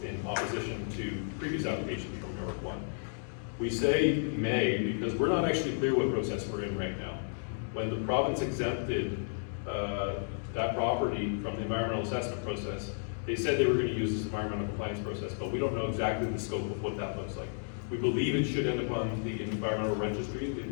in opposition to previous applications from York1. We say may because we're not actually clear what process we're in right now. When the province exempted that property from the environmental assessment process, they said they were going to use this environmental compliance process, but we don't know exactly the scope of what that looks like. We believe it should end up on the environmental registry, the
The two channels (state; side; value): silent; right; digital silence